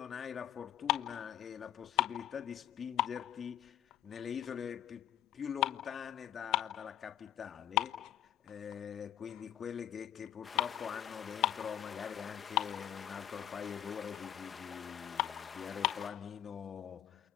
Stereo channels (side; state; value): right; quieter; 11.3 dB